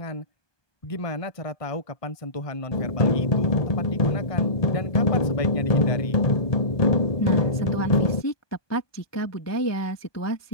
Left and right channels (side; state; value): right; late; 1.2 ms